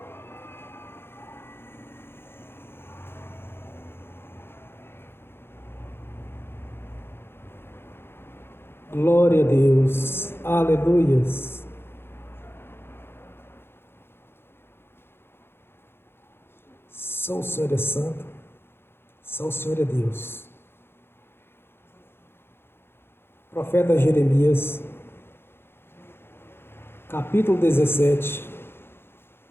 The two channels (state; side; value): late; right; 0.11 ms